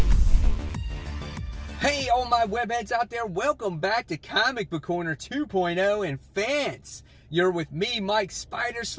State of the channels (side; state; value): both; identical; correlation 1.00